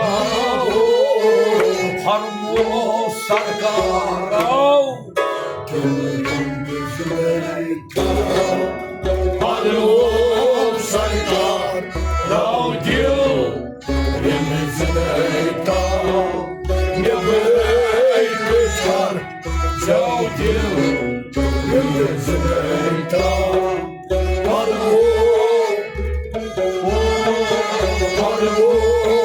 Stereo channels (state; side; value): identical; both; correlation 1.00